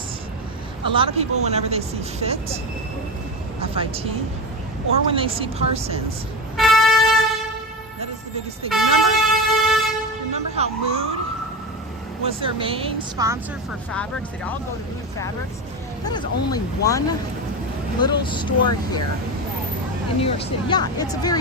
A lot of people, whenever they see FIT, F-I-T, or when they see Parsons, that is the biggest thing. Remember how Mood was their main sponsor for fabrics? They'd all go to Mood Fabrics. That is only one little store here in New York City. Yeah, it's a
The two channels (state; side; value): normal; both; correlation 0.21